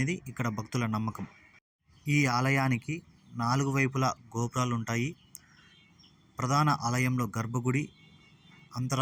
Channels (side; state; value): both; identical; correlation 1.00